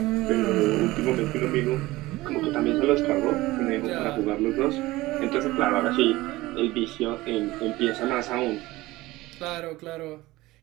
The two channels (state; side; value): quieter; left; 19.0 dB